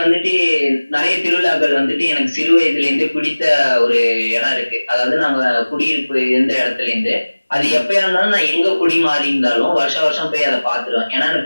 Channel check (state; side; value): inverted; both; correlation -1.00